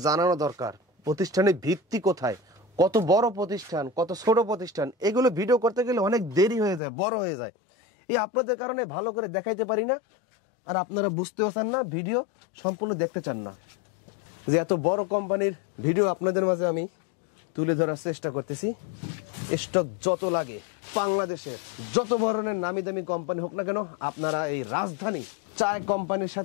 জানানো দরকার, প্রতিষ্ঠানের ভিত্তি কোথায়, কত বড় প্রতিষ্ঠান, কত ছোট প্রতিষ্ঠান, এগুলো ভিডিও করতে গেলে অনেক দেরি হয়ে যায়, বড় হয়ে যায়। এই আপনাদের কারণে ভালো করে দেখাইতে পারি না, আর আপনারা বুঝতেও চান না, ভিডিও সম্পূর্ণ দেখতে চান না। যে এত বড় কোম্পানির ভিডিও আপনাদের মাঝে আমি তুলে ধরার চেষ্টা করতেছি। স্টক যত লাগে, বাংলাদেশে যত ধরনের নামি দামি কোম্পানি হোক না কেন, আপনারা এই রাজধানী চায় কোম্পানির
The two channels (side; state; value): right; drops out; at 6.8 s